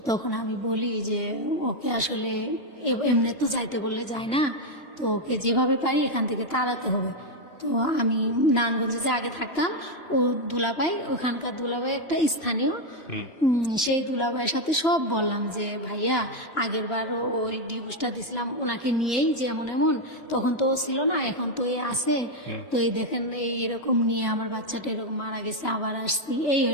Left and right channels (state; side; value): late; right; 3.1 ms